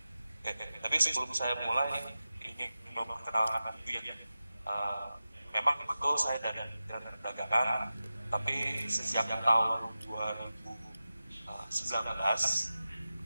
Tapi sebelum saya mulai ingin memperkenalkan diri ya. Memang betul saya dari Kementerian Perdagangan, tapi sejak tahun 2019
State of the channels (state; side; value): inverted; both; correlation -0.94